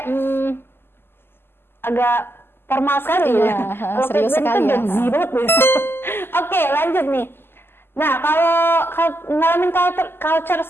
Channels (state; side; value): late; right; 0.11 ms